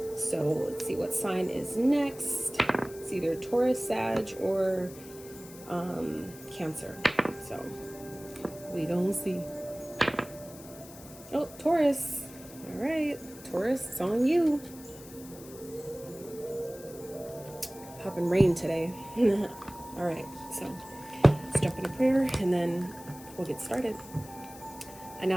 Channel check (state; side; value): noise; left; hiss, 18 dB below the sound